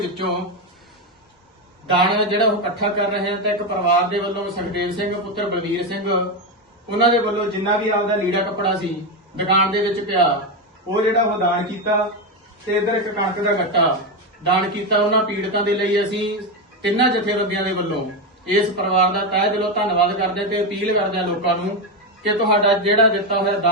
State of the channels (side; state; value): both; normal; correlation 0.11